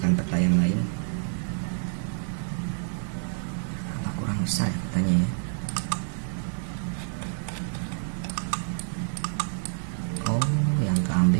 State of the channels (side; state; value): left; silent; digital silence